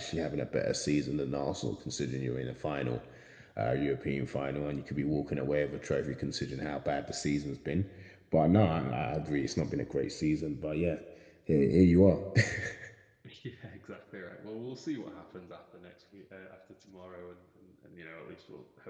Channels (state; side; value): identical; both; correlation 1.00